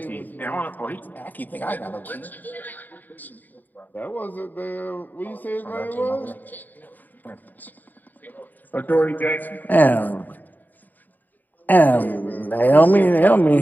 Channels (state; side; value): late; right; 0.086 ms